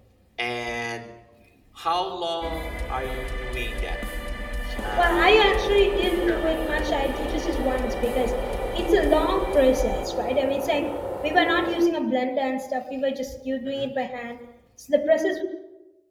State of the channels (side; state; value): both; identical; correlation 1.00